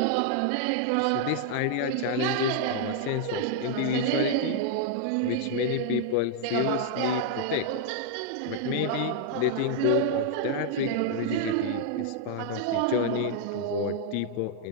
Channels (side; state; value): both; different; correlation -0.01